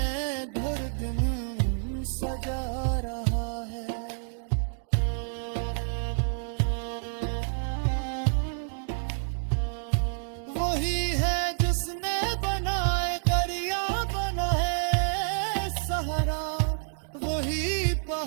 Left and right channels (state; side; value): silent; left; digital silence